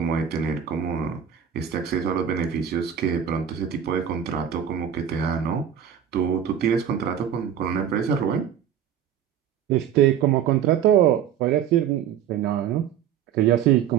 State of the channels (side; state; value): left; quieter; 9.0 dB